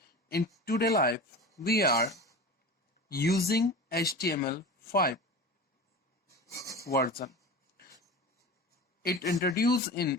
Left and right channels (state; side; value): normal; both; correlation 0.33